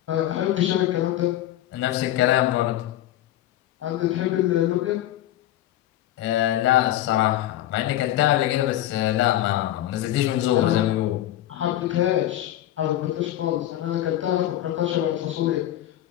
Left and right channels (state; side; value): quieter; right; 13.4 dB